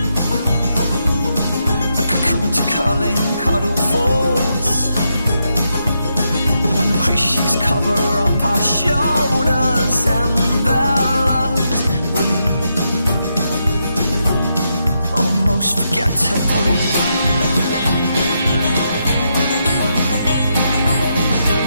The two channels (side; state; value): both; inverted; correlation -0.82